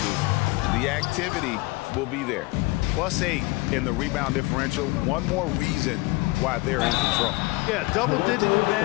The activity will be there. +8 in the rebound differential. One more reason why they're in control. Yeah, double-digit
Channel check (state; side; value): quieter; right; 23.0 dB